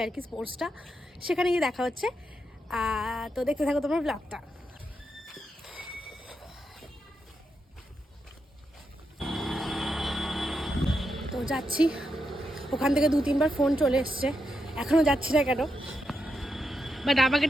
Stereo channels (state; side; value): normal; both; correlation 0.84